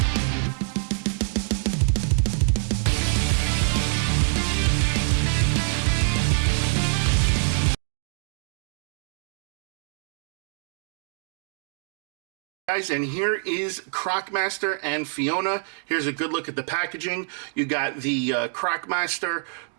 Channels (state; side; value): silent; left; 58 dB below the other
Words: Guys, and here is Croc Master and Fiona. Here's a good look at the packaging. You got the Croc Master